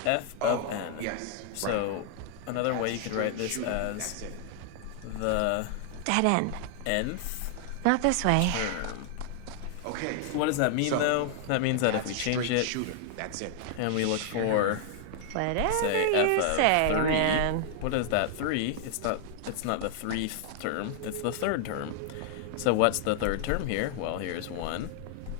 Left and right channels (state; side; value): different; both; correlation 0.00